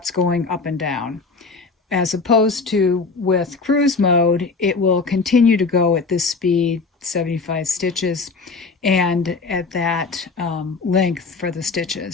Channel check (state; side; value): quieter; right; 4.3 dB